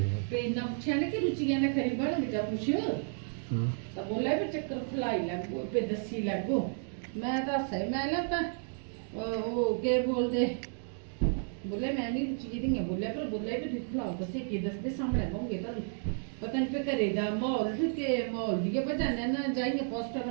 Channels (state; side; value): silent; left; 56 dB below the other